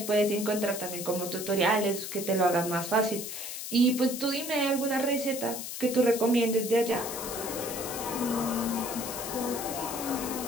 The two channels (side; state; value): left; noise; hiss, 7 dB below the sound